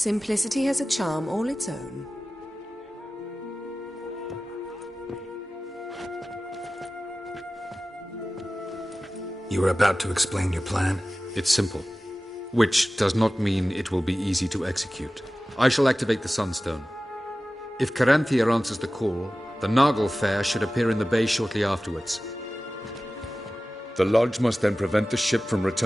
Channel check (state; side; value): normal; both; correlation 0.96